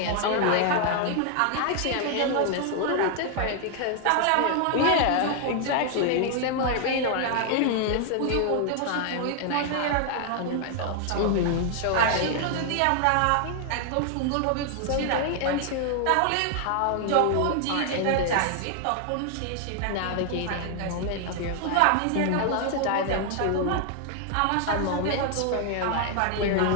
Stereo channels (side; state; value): both; different; correlation 0.00